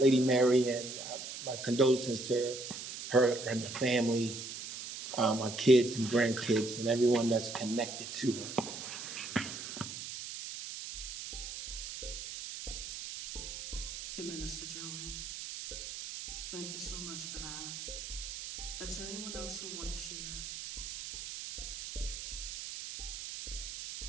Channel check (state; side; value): noise; right; hiss, 8 dB below the sound